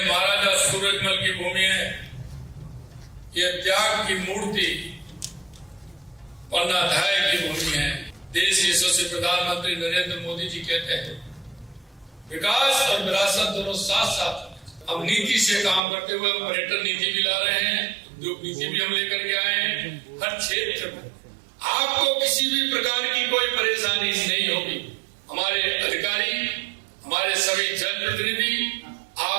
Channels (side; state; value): left; drops out; at 15.8 s